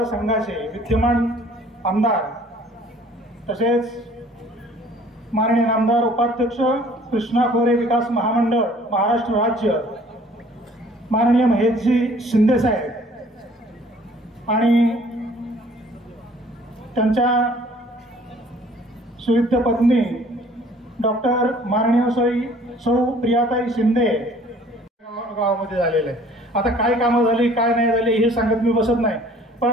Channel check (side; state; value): both; normal; correlation 0.54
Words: विद्यमान आमदार तसेच माननीय आमदार उपाध्यक्ष कृष्णा खोरे विकास महामंडळ महाराष्ट्र राज्य माननीय महेशजी शिंदे साहेब आणि त्यांच्या सुविद्य पत्नी डॉक्टर माननीय सौ प्रियाताई शिंदे गावामध्ये झालेले आहे. आता काय कामं झाली काय नाही झाली हे सांगत मी बसत नाही,